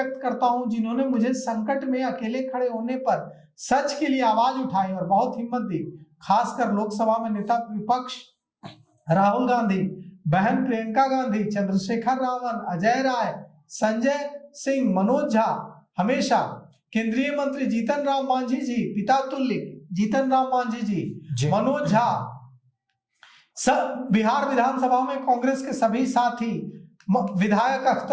करता हूं, जिन्होंने मुझे संकट में अकेले खड़े होने पर सच के लिए आवाज उठाई और बहुत हिम्मत दी। खासकर लोकसभा में नेता विपक्ष राहुल गांधी, बहन प्रियंका गांधी, चंद्रशेखर रावण, अजय राय, संजय सिंह, मनोज झा, हमेशा केंद्रीय मंत्री जीतन राम मांझी जी, पिता तुल्य जीतन राम मांझी जी, मनोज झा, सब बिहार विधानसभा में कांग्रेस के सभी साथी, विधायक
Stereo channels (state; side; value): identical; both; correlation 1.00